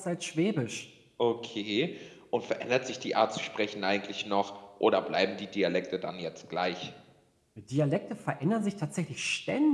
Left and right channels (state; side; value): identical; both; correlation 1.00